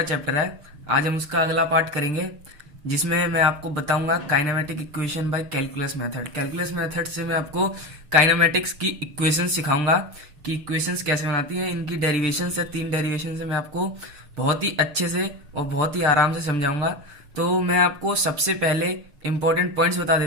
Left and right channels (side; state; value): left; late; 6.6 ms